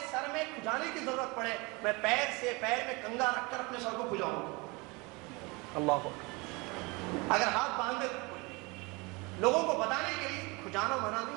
سر میں کھجانے کی ضرورت پڑے، میں پیر سے پیر میں کنگا رکھ کر اپنے سر کو کھجاؤں گا۔ اللہ اکبر۔ اگر ہاتھ باندھ دے لوگوں کو بتانے کے لیے کھجانا منع نہیں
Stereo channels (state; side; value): quieter; left; 26.5 dB